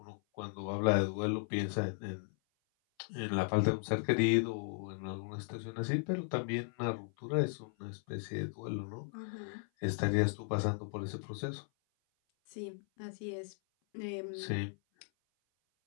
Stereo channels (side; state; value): right; silent; 53 dB below the other